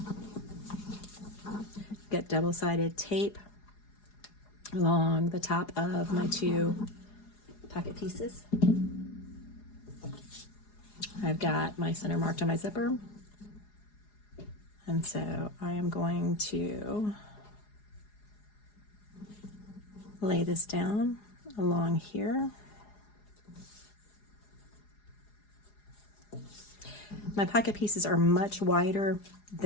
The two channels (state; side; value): late; right; 4.8 ms